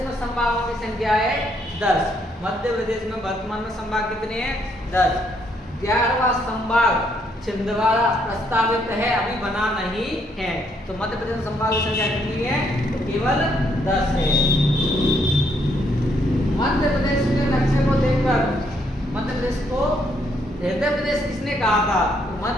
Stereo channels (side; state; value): both; normal; correlation 0.72